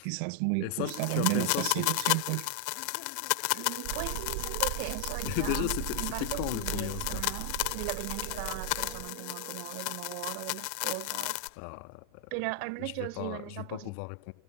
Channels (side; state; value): both; different; correlation 0.00